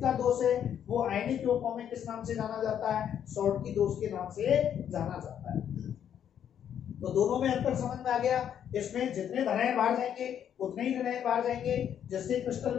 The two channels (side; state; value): right; quieter; 9.3 dB